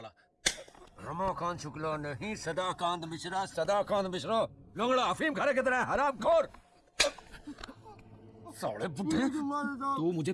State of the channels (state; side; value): identical; both; correlation 1.00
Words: रमाकांत शुक्ला नहीं, सदाकांत मिश्रा। सदाकांत मिश्रा लोंगड़ा अफीम खाने की तरह हरामखोर। साले बुड्ढे, तू मुझे